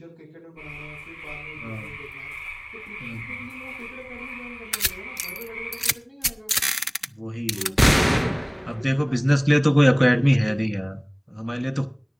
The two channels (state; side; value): identical; both; correlation 1.00